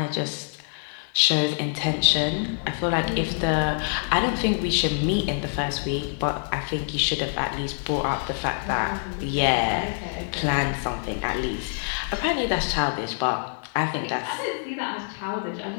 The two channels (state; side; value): silent; right; 61 dB below the other